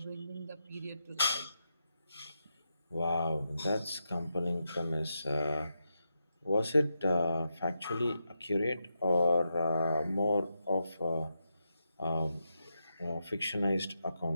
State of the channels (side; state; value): both; inverted; correlation -0.86